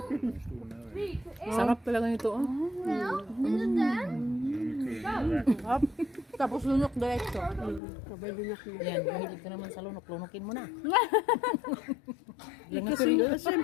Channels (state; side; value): drops out; right; at 7.8 s